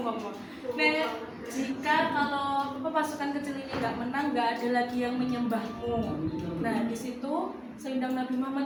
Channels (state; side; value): identical; both; correlation 1.00